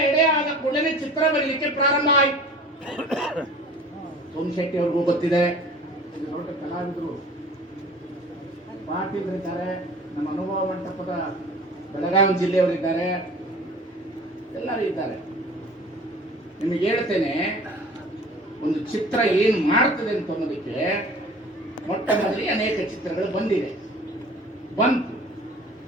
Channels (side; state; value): both; normal; correlation 0.44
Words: ಎಡೆ ಆದ ಕೂಡಲೇ ಚಿತ್ರ ಬರೀಲಿಕ್ಕೆ ಪ್ರಾರಂಭ ಆಯಿತು. ಸೋಮಶೆಟ್ಟಿ ಅವ್ರಿಗೂ ಗೊತ್ತಿದೆ, ದೊಡ್ಡ ಕಲಾವಿದರು, ಪಾಟೀಲರಿದ್ದಾರೆ, ನಮ್ಮ ಅನುಭವ ಮಂಟಪದ ಬೆಳಗಾವಿ ಜಿಲ್ಲೆಯವರಿದ್ದಾರೆ, ಎಲ್ಲರೂ ಇದ್ದಾರೆ. ನಿಮಗೆ ಹೇಳ್ತೇನೆ, ಒಂದು ಚಿತ್ರ ಏನು ಮಾಡ್ತದೆ ಅಂತ ಅನ್ನೋದಕ್ಕೆ ಮೊಟ್ಟ ಮೊದಲಿಗೆ ಅನೇಕ ಚಿತ್ರಗಳು ಬಂತು.